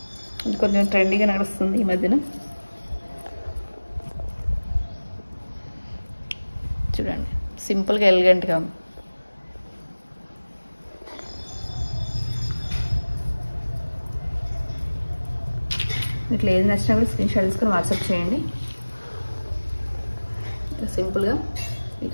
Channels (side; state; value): both; inverted; correlation -1.00